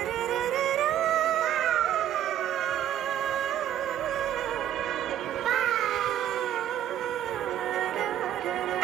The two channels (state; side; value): quieter; left; 10.9 dB